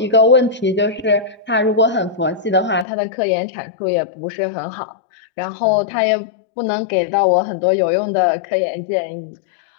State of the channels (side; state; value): right; drops out; at 2.9 s